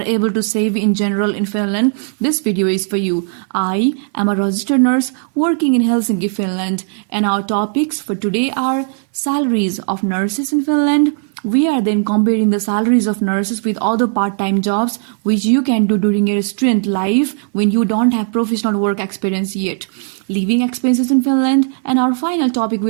able to save in general in Finland, this video is for you. I am a registered nurse working in Helsinki, Finland, and our topics for today are salaries of nurses in Finland. We are then comparing the salaries of nurses with other part-time jobs which you can do during your student life when you don't have professional work experience yet. Living expenses in Finland, and our final topic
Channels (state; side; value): silent; left; 56 dB below the other